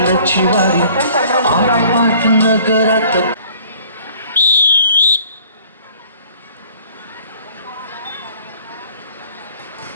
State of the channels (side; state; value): both; inverted; correlation -0.54